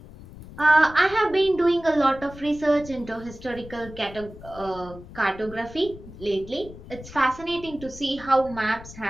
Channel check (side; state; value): left; noise; rumble, 16 dB below the sound